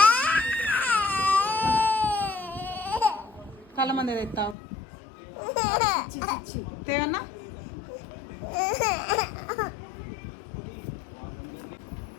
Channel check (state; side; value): drops out; right; at 4.5 s